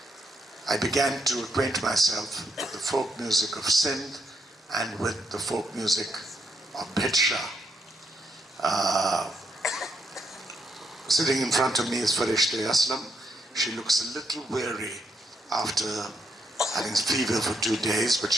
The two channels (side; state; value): both; normal; correlation 0.77